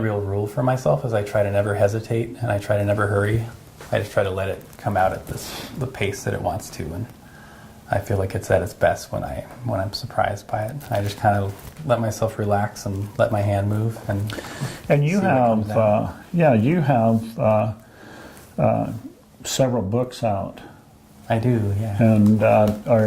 rule for myself is I try to never hesitate and I try to never hurry. I just try to let it come out at the pace that it wants to, and I feel like it's at its best when I'm surprised by it. I just kind of let myself relax and let my hand move, and you have several books out. I do, yeah. And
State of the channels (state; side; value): identical; both; correlation 1.00